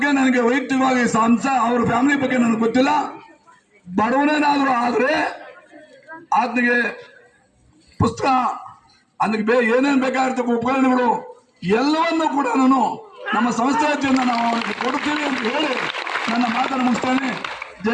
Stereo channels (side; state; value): both; identical; correlation 1.00